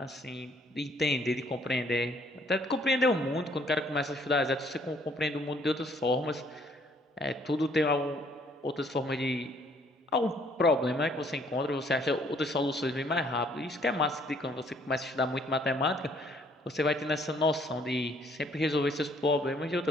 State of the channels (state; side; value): normal; both; correlation 0.63